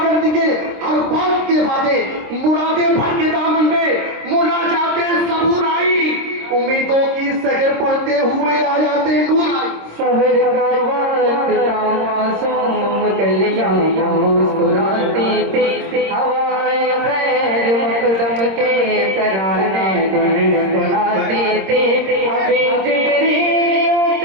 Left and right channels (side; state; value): left; late; 26 ms